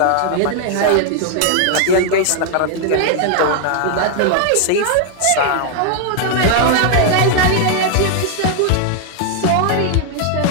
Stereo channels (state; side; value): different; both; correlation 0.00